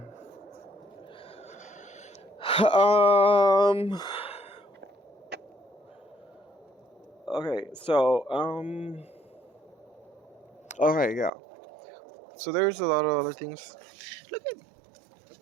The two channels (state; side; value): drops out; left; at 11.3 s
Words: Okay, so okay, yeah. So there's a lot of other things. Look at